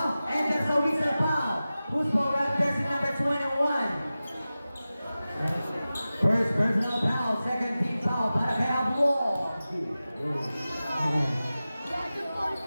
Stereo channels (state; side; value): inverted; both; correlation -0.95